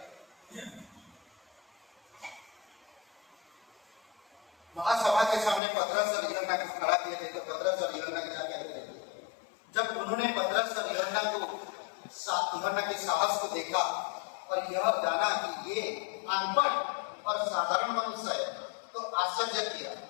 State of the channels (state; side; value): drops out; right; at 5.6 s